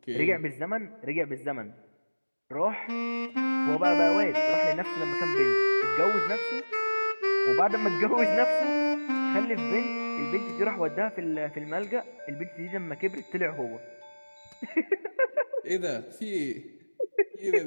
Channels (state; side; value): inverted; both; correlation -1.00